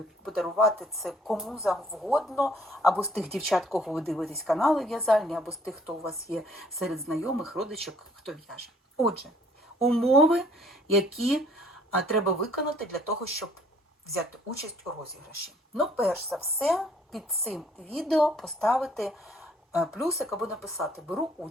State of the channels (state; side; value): normal; both; correlation 0.60